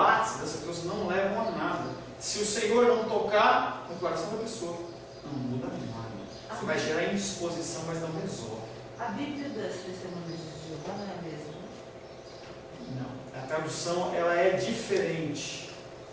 essas pessoas não levam a nada. Se o Senhor não tocar no coração da pessoa, não muda nada. Você vai gerar indisposição, mas não resolve. A Bíblia das Testemunhas de Jeová não é a mesma? Não. A tradução ela é diferente.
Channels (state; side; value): identical; both; correlation 1.00